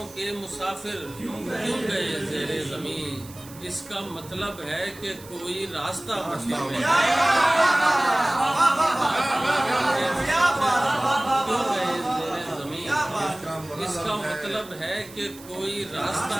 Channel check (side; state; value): right; noise; hiss, 19 dB below the sound